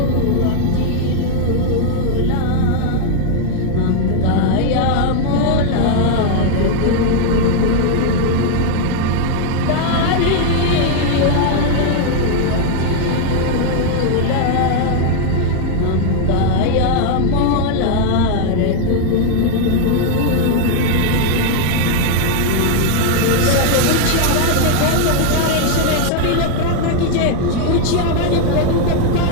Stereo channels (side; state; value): both; different; correlation 0.00